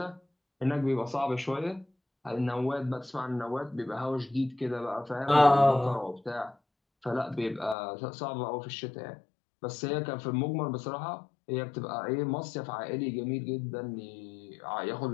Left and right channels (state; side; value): drops out; right; at 7.8 s